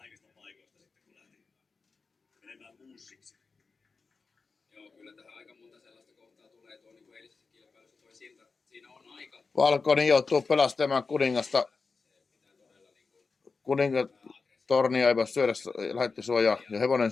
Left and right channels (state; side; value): quieter; right; 4.5 dB